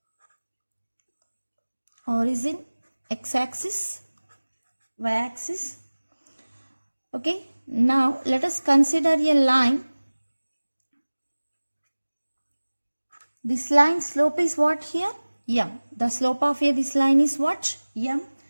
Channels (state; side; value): inverted; both; correlation -1.00